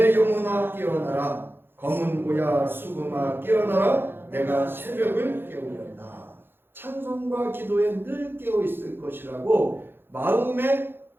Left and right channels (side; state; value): left; late; 0.10 ms